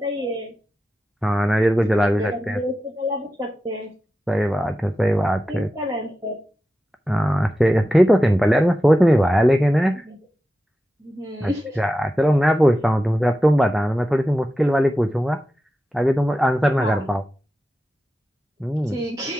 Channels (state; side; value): normal; both; correlation 0.92